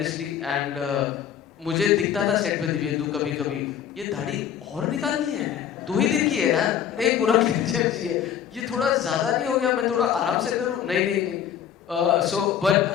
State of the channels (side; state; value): right; quieter; 9.3 dB